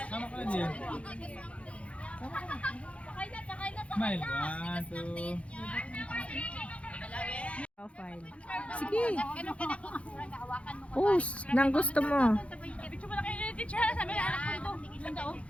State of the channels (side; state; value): right; late; 0.062 ms